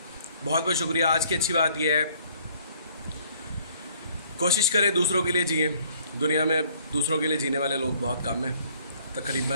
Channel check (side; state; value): both; inverted; correlation -0.60